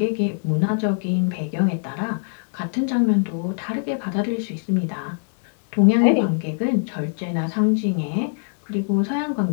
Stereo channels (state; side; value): silent; right; digital silence